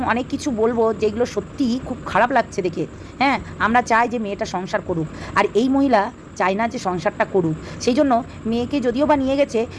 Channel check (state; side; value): identical; both; correlation 1.00